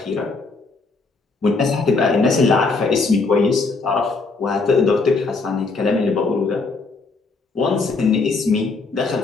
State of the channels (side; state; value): right; quieter; 4.0 dB